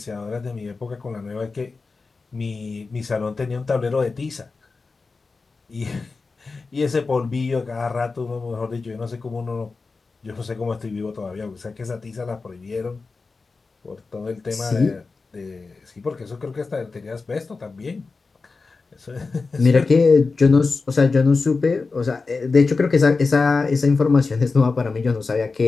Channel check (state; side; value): quieter; right; 4.2 dB